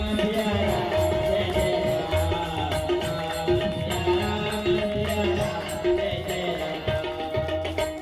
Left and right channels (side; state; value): both; identical; correlation 1.00